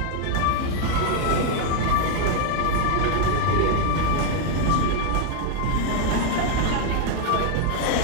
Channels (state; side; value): different; both; correlation 0.00